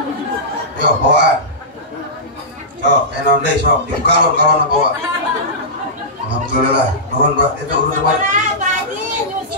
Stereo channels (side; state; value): both; normal; correlation -0.16